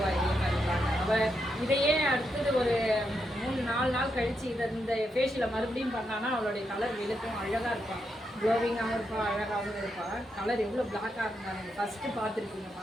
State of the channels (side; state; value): both; normal; correlation 0.82